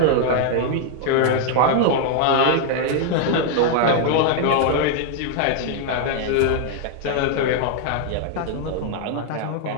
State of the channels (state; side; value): different; both; correlation 0.00